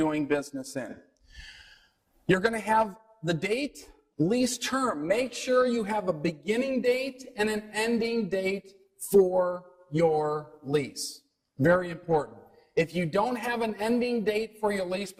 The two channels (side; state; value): both; identical; correlation 1.00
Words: business in. You're going to have the date, lease term. Make sure you have a beginning date and an ending date for your lease. Very important. If you don't have an ending date for your lease,